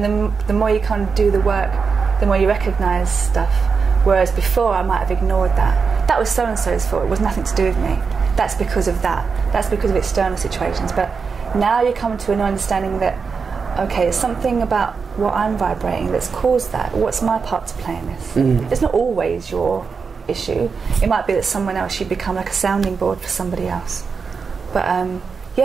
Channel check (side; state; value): left; quieter; 5.3 dB